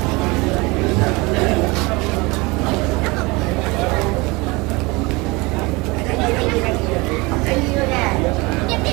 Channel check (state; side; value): quieter; left; 24.6 dB